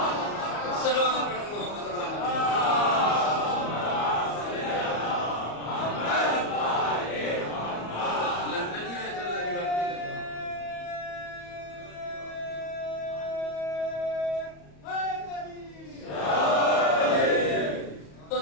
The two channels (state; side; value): late; right; 34 ms